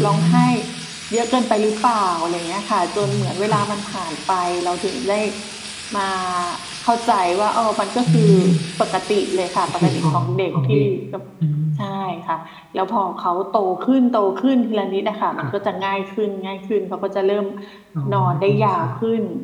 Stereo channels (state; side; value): identical; both; correlation 1.00